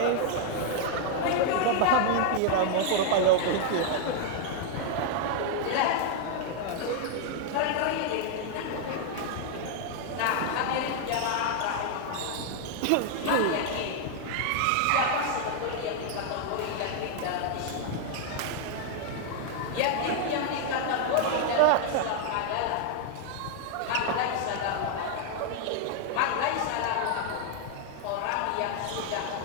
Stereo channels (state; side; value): different; both; correlation 0.00